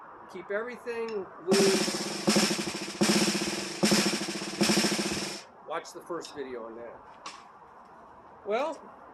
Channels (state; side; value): identical; both; correlation 1.00